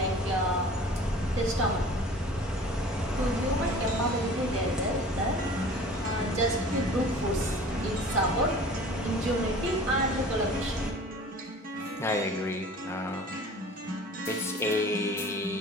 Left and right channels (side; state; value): both; normal; correlation 0.44